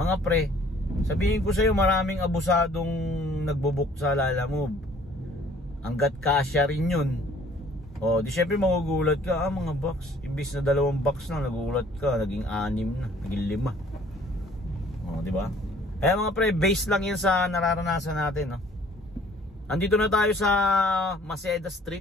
pre, sabihin ko sa iyo, maraming abusadong nagbo-book sa Lalamove. Hanggat kasya rin yun. O, di syempre magugulat ka, mga box. Imbis na 2 box na, nagugulat ka, naging 6 na, naging 5. O, di ba? Kaya mga pre, base lang yan sa nararanasan natin, no? Andito na tayo sa Maceda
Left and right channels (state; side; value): normal; both; correlation 0.56